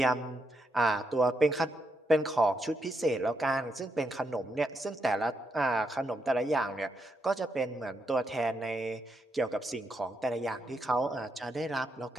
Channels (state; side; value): normal; both; correlation 0.81